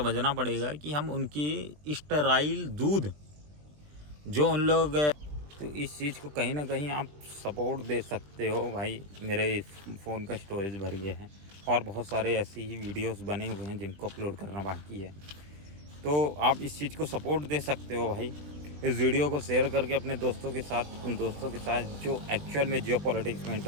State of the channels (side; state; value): left; late; 20 ms